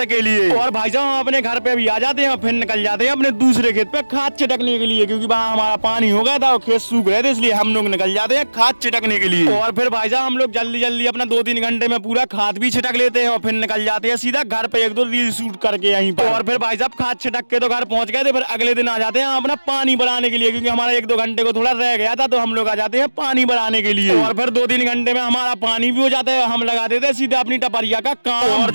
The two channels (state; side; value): inverted; both; correlation -1.00